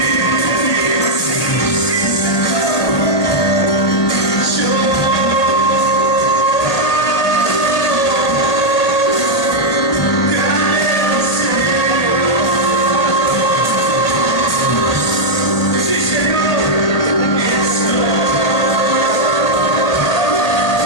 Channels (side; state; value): right; late; 1.8 ms